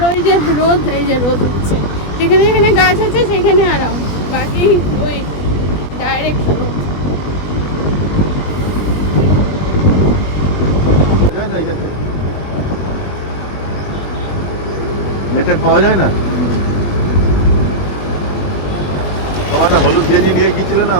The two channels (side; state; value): right; late; 20 ms